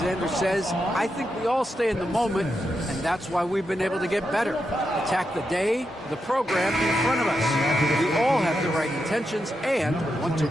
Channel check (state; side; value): normal; both; correlation 0.86